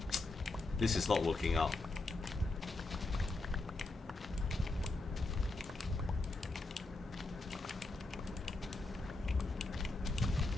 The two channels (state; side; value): quieter; right; 3.2 dB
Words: This is not working out.